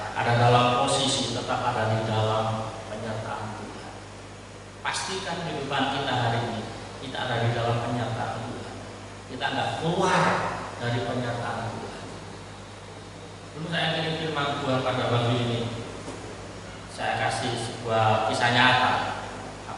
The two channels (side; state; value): both; identical; correlation 1.00